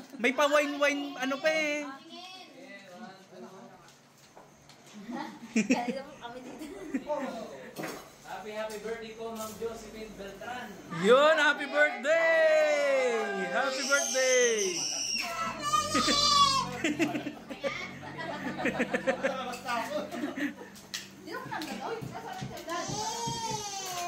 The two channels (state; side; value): identical; both; correlation 1.00